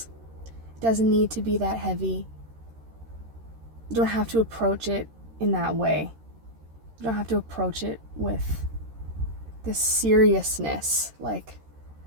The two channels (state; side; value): late; left; 13 ms